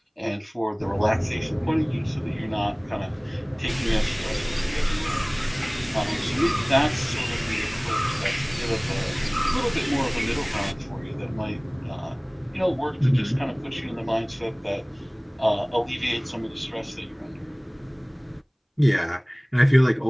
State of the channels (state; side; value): identical; both; correlation 1.00